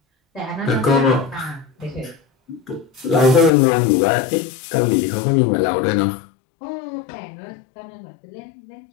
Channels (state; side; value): drops out; right; at 3.5 s